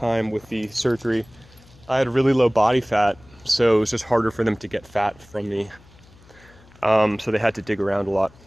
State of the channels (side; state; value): left; noise; hum, 26 dB below the sound